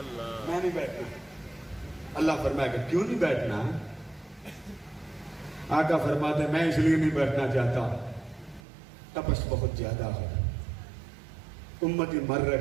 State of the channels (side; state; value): left; drops out; at 8.6 s